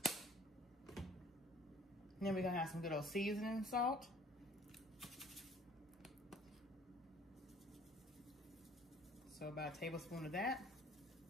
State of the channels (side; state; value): both; normal; correlation 0.53